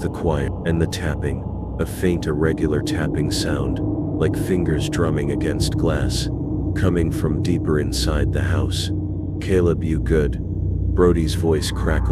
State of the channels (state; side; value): identical; both; correlation 1.00